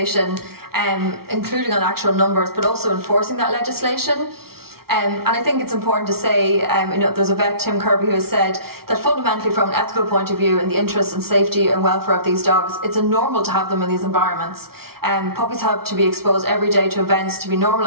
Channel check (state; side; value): late; left; 0.94 ms